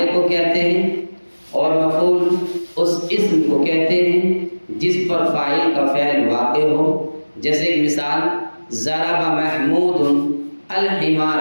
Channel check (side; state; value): both; inverted; correlation -1.00